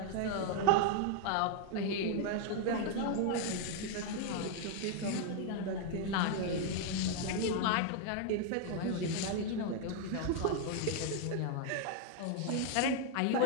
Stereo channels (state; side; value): different; both; correlation 0.00